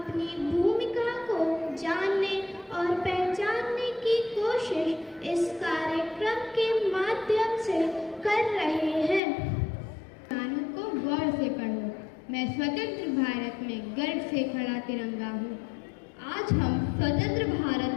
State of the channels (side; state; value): right; drops out; at 9.2 s